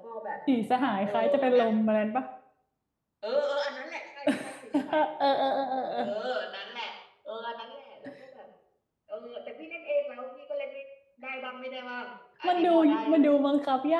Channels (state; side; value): identical; both; correlation 1.00